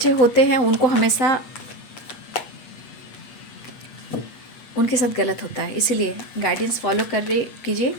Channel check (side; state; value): right; late; 8.3 ms